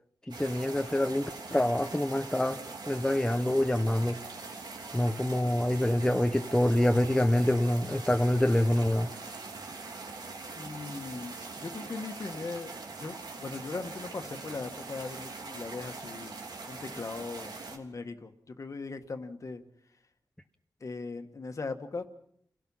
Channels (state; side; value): normal; both; correlation 0.95